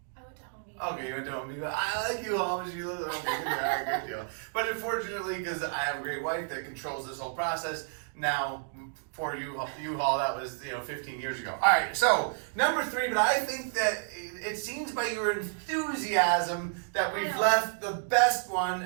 I went to Home Depot. Okay, you went to Home Depot. I like you all, but you live at Home Depot. Yeah, good deal. But unfortunately, because I have a great wife that controls this whole process, now for U-Haul, that was 15 years ago. All right, so number 3, but I think that it seems by your enthusiasm that I we've know. left the best one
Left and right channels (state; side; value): silent; left; digital silence